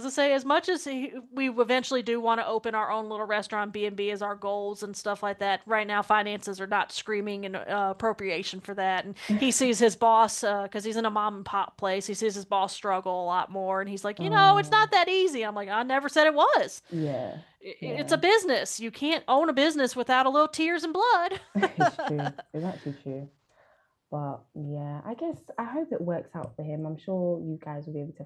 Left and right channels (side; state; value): both; identical; correlation 1.00